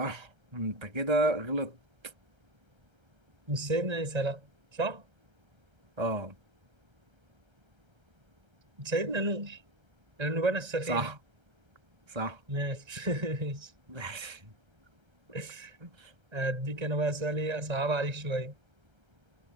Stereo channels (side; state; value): left; late; 1.3 ms